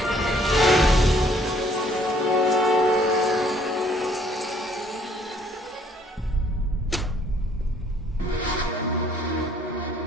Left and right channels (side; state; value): both; normal; correlation 0.62